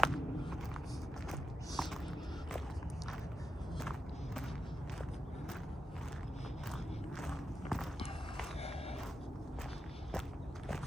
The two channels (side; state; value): both; normal; correlation 0.90